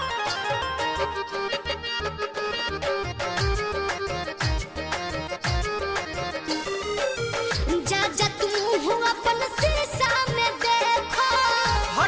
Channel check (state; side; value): identical; both; correlation 1.00